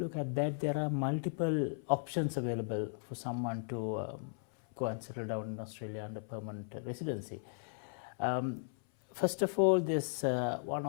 at that, there are multiple options available for someone to go and settle down in Australia under permanent residency. first of all, there's one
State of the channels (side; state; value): right; silent; 54 dB below the other